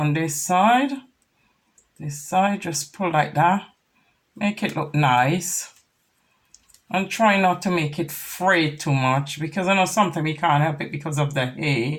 this side. This side, just pull like that. Make it look nice. And try not to make it fray too much, because I know sometimes you can't help it because of the hair.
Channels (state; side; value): identical; both; correlation 1.00